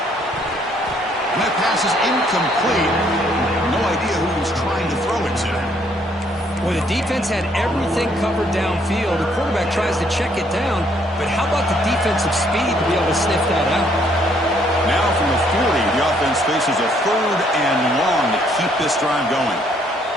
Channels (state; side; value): normal; both; correlation 0.67